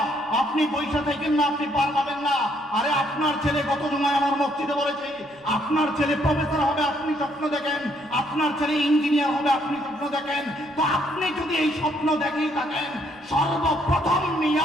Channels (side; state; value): right; noise; rumble, 30 dB below the sound